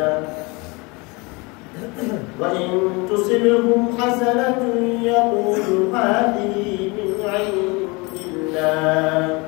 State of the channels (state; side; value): quieter; right; 26.8 dB